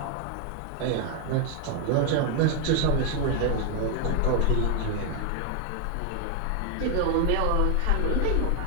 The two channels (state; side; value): different; both; correlation 0.00